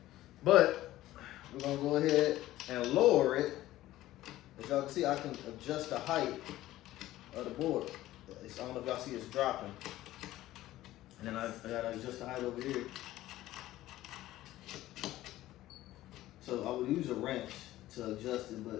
But we're gonna go ahead and lower it. As y'all can see, I can adjust the height of the board. I don't know if y'all see it's dropping. And then I gotta adjust the height over here. So I would use a wrench to adjust it,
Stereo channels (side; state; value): right; quieter; 15.4 dB